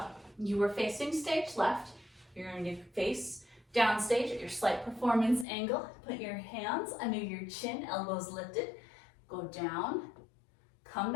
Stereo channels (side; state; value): right; drops out; at 5.5 s